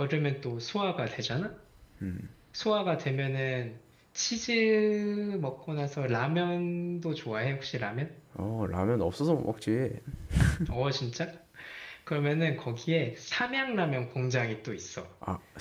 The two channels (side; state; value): both; identical; correlation 1.00